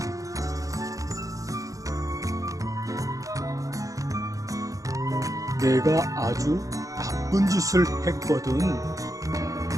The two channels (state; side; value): late; left; 0.16 ms